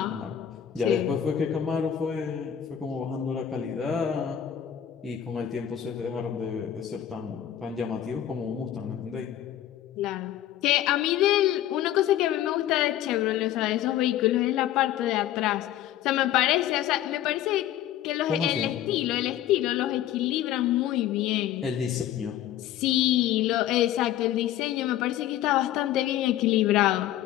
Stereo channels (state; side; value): quieter; right; 11.5 dB